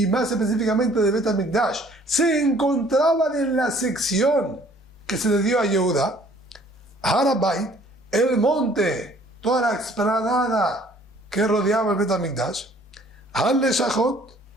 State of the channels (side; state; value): both; normal; correlation 0.57